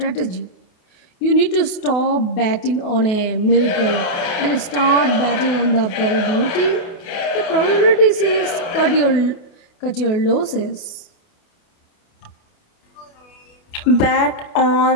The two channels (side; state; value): right; late; 28 ms